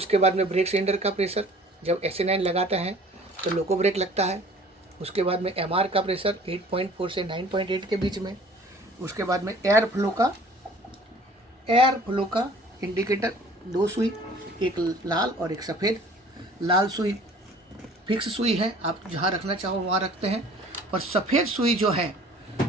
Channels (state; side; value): normal; both; correlation 0.50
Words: बाद में ब्रेक सिलेंडर का प्रेशर, जब SA9 लगाते हैं तो लोको ब्रेक लगता है। उसके बाद में MR का प्रेशर 8.4 से 9.8 के बीच में। उसके बाद में एयर फ्लो का इंडिकेटर, 2 सुई, एक लाल और एक सफ़ेद। लाल सुई फिक्स सुई है, आप जहाँ रखना चाहो वहाँ रखते हैं। और सफ़ेद सुई जो है